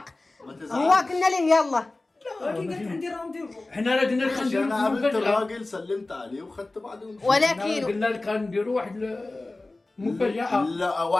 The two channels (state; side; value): quieter; right; 3.0 dB